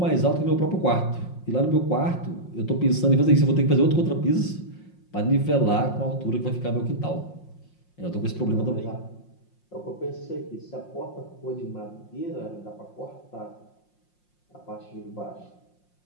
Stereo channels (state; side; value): late; right; 5.6 ms